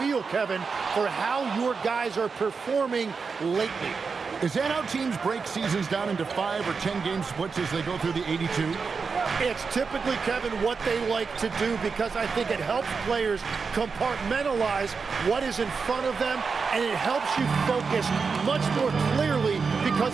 Kevin, for how your guys are performing lately. Is that how teams break seasons down into 5 or 10-game splits as they go through the 82? It's typically, Kevin, what they like to do because I think it helps players compartmentalize what is in front of them, and it helps you focus much more clearly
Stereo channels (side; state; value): left; quieter; 5.1 dB